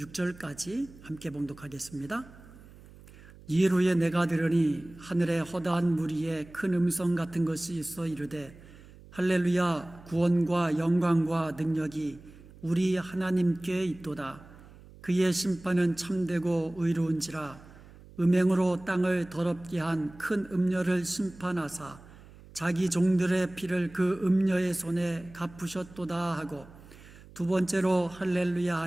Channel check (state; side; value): noise; right; hum, 21 dB below the sound